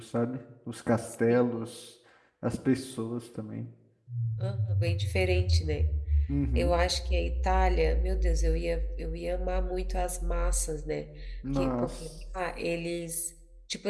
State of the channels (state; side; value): identical; both; correlation 1.00